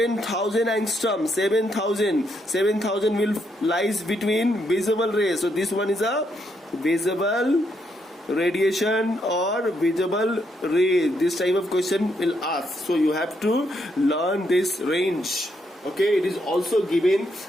angstrom, 7,000 will lies between visible rays. So this one is a visible radiation or visible ray. This type of question will ask. So you have to learn this range. Okay, it is also given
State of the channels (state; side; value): normal; both; correlation 0.77